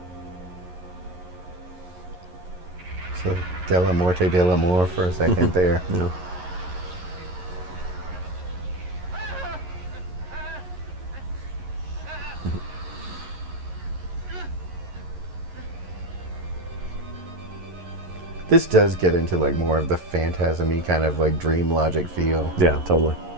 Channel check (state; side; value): late; left; 11 ms